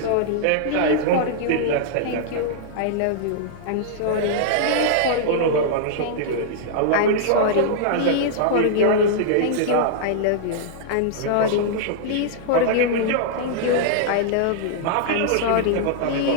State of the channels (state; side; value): different; both; correlation -0.02